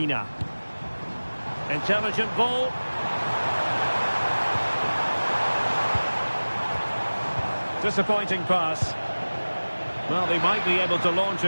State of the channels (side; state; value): both; inverted; correlation -1.00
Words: Intelligent ball. Disappointing pass. Well, they might be able to launch